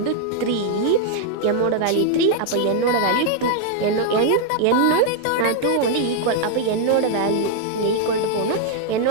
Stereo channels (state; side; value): different; both; correlation 0.00